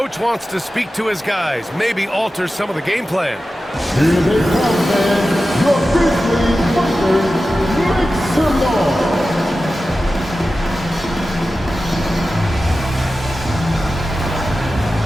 wants to speak to his guys, maybe alter some of the game plan. Here they come, man. Your Grizzlies fighters, make some noise.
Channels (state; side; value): normal; both; correlation 0.94